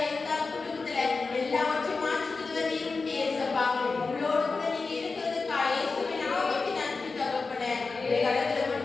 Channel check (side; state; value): right; quieter; 4.2 dB